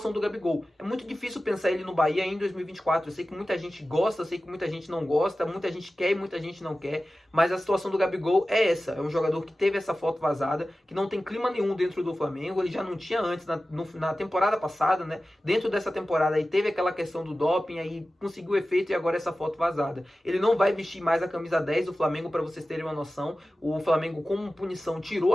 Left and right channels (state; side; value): normal; both; correlation 0.95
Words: do Gabigol. É muito difícil pensar ele no Bahia em 2024. Eu sei que muita gente gosta, eu sei que muita gente não gosta, muita gente quer e muita gente não quer, mas a situação do Gabigol é essa. É um jogador que teve essa foto vazada, que não tem clima nenhum dentro do Flamengo. Ele já não tinha antes, na temporada passada, né? Dentro dessa temporada aí teve aquela questão do doping, aí conseguiu efeito e agora essa foto vazada. Ele não vai vestir mais a camisa 10 do Flamengo, para vocês terem uma noção. O Flamengo, como punição, tirou